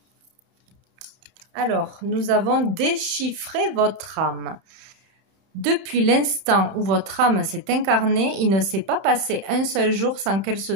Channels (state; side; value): late; left; 31 ms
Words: Alors, nous avons déchiffré votre âme. Depuis l'instant où votre âme s'est incarnée, il ne s'est pas passé un seul jour sans qu'elle se